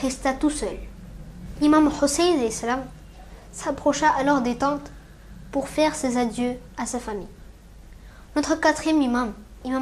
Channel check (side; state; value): both; identical; correlation 1.00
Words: resta tout seul. Imam Hussein alayhi salam s'approcha alors des tentes pour faire ses adieux à sa famille. Notre quatrième imam,